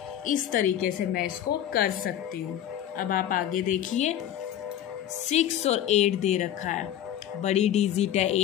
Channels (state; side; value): quieter; right; 11.1 dB